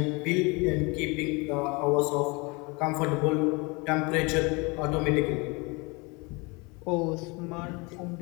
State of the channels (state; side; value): quieter; right; 27.7 dB